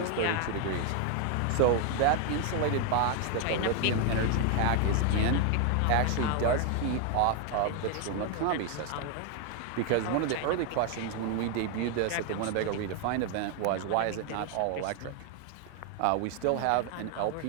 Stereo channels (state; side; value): different; both; correlation 0.01